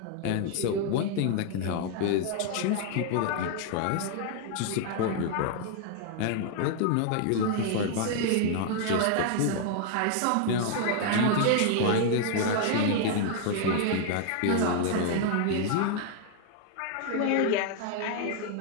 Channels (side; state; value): both; different; correlation 0.00